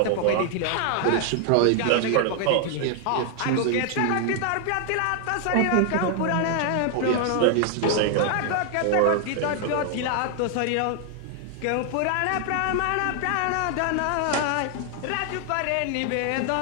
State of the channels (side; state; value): both; different; correlation 0.00